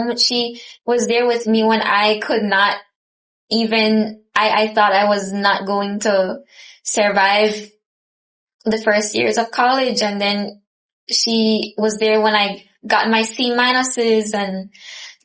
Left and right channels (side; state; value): both; identical; correlation 1.00